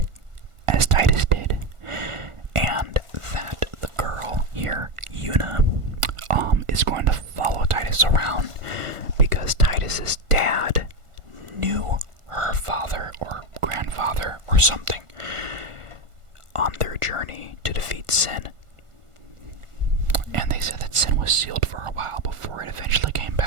as Titus did, and that the girl here, Yuna, is going to follow Titus around because Titus's dad knew her father or grandfather or something on their journey to defeat sin. And they said that sin was sealed for a while before it eventually came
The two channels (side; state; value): left; late; 1.4 ms